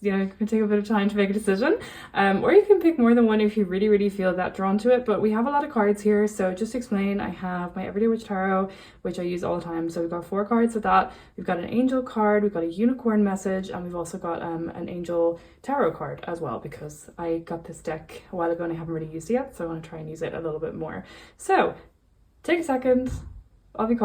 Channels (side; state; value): both; identical; correlation 1.00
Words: can take a bit of time to make a decision. Or you can pick more than one if you really, really feel that drawn to it. But we have a lot of cards here, so just to explain, I have my Everyday Witch Tarot, which I use all the time. So we've got 4 cards with that. We've got an angel card, we've got a unicorn message, and we've also got an angel tarot card as well, because I got this deck a while ago and I haven't really used it yet, so I want to try and use it a little bit more. So take a second, I'll be